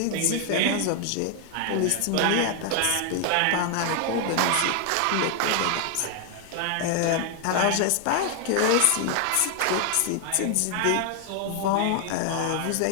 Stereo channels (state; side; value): different; both; correlation 0.00